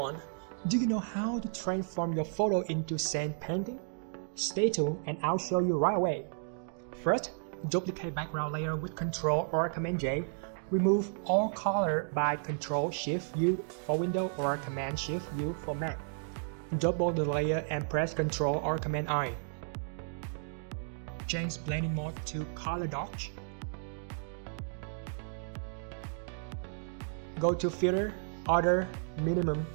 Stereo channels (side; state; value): left; silent; digital silence